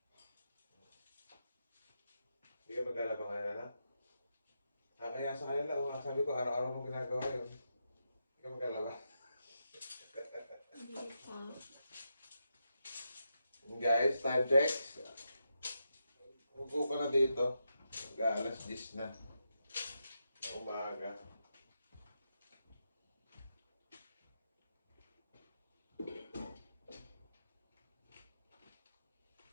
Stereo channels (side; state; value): both; inverted; correlation -0.85